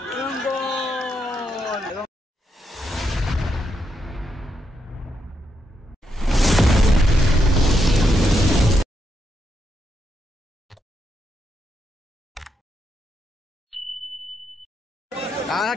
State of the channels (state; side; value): normal; both; correlation 0.82